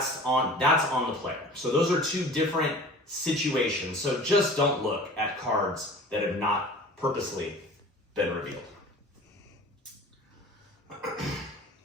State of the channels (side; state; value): both; normal; correlation 0.42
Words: on the player. So those are 2 different situations. So just don't look at cards that have not purposely been revealed.